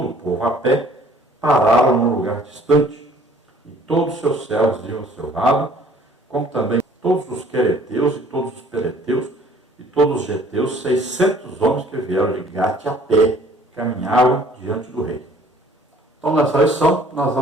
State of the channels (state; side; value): normal; both; correlation 0.55